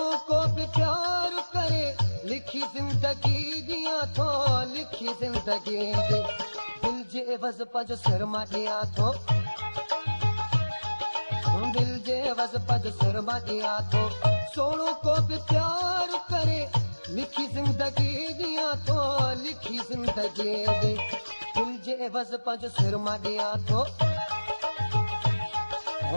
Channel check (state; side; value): inverted; both; correlation -1.00